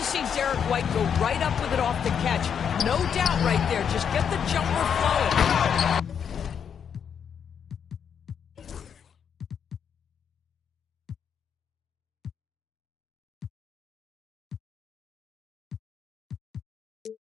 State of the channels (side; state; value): right; quieter; 7.6 dB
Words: see Derek White go right up with it off the catch. No doubt right there. Just get the jumper flowing.